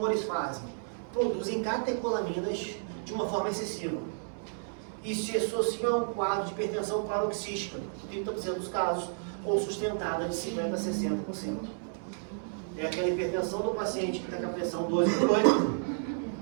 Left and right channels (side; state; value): left; silent; 57 dB below the other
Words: fazem? Produzem catecolaminas de uma forma excessiva. E se associam a um quadro de hipertensão paroxística, 30% dos casos, ou sustentada de 50% a 60%. É aquela hipertensão do paciente que está com a pressão